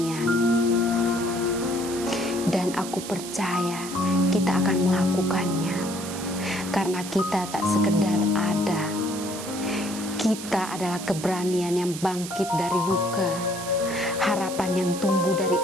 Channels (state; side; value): noise; right; hiss, 10 dB below the sound